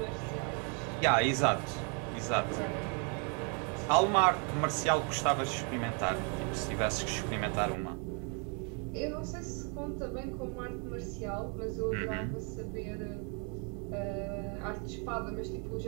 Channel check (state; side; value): quieter; left; 36.5 dB